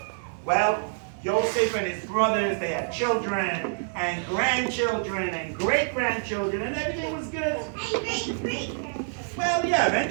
Well, Yosef and his brothers, they had children and grandchildren and great-grandchildren, and everything was good. Well, yeah,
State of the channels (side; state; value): left; silent; digital silence